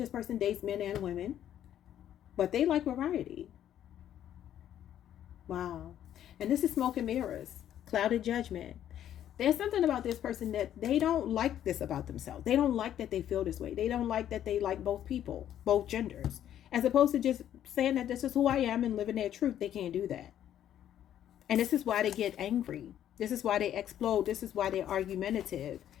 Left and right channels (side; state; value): right; quieter; 10.9 dB